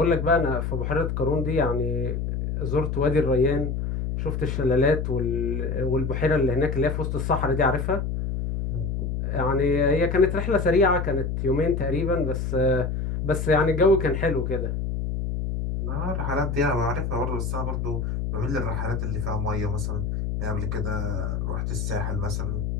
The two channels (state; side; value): noise; left; hum, 2 dB below the sound